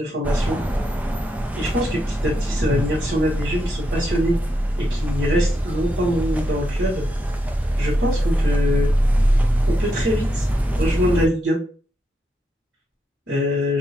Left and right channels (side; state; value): both; normal; correlation 0.82